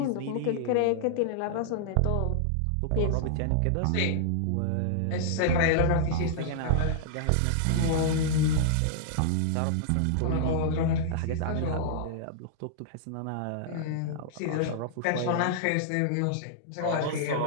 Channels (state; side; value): different; both; correlation -0.01